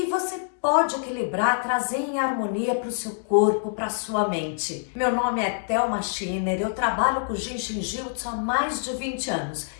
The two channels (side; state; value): right; silent; digital silence